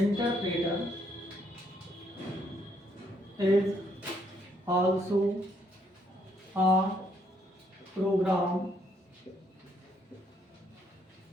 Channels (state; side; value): normal; both; correlation 0.72